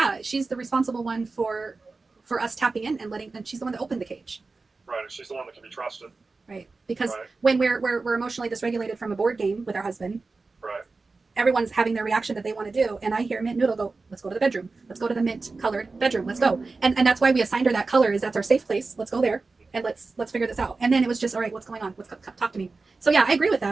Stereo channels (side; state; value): left; quieter; 3.9 dB